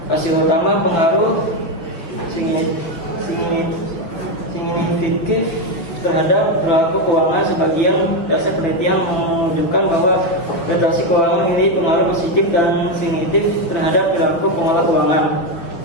Hasil utama pengaruh signifikan terhadap perilaku keuangan. Sebagian dasar penelitian menunjukkan bahwa literasi keuangan memiliki pengaruh positif dan signifikan terhadap perilaku pengelola keuangan.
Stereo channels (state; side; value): late; right; 6.0 ms